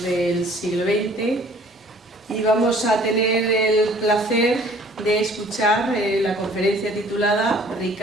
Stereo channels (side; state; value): both; normal; correlation 0.54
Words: del siglo XX y vamos a tener el placer de escuchar la conferencia titulada